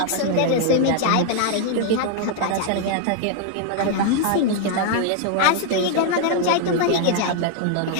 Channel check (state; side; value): different; both; correlation 0.00